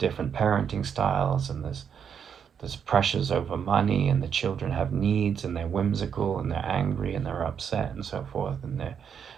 parenting styles, and there's pressures over money, and the children have needs, and they're whimsical, and they're angry, and they're upset, and so forth, and they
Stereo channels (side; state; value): left; quieter; 7.5 dB